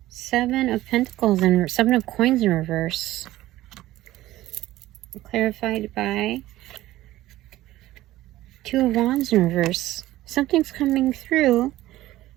7 of Pentacles and 7 of Coins in reverse. Clarified by Two of Wands in reverse. Something's coming through.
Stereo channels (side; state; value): left; quieter; 15.8 dB